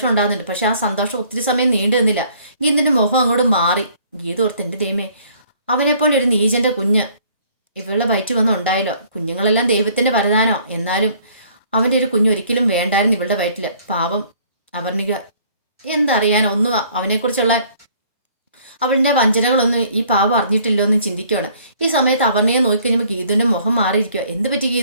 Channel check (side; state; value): both; inverted; correlation -0.58